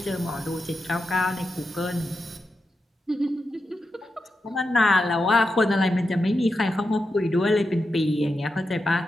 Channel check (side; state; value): both; normal; correlation 0.88